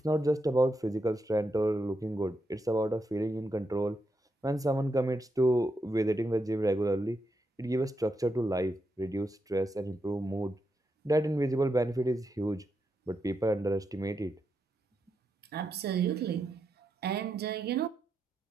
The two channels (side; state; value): both; normal; correlation 0.84